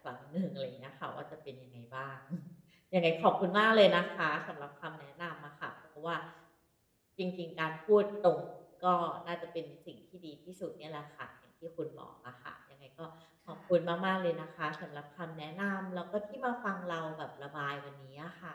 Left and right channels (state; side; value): identical; both; correlation 1.00